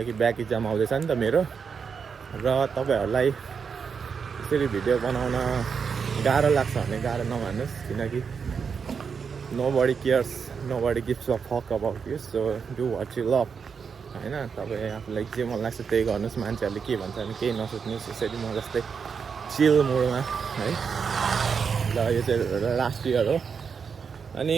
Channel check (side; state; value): left; quieter; 6.1 dB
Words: ब्याक इक्जाम आउँदैछ नि त मेरो। र तपाईँहरूलाई यसरी भिडियो बनाउन गाह्रो लाग्छ भने गाह्रो नमान्नुहोस्, किनकि nobody cares, nobody gives a fuck about you. So do what you love होइन। तपाईँ आफूलाई जे मन लाग्छ त्यही गर्नुहोस्, मान्छेहरूले के भन्छ भने केही नसोच्नुहोस्। यसरी म जस्तै चिल मुडमा है। र यो चाहिँ लास्ट इयर हो अनि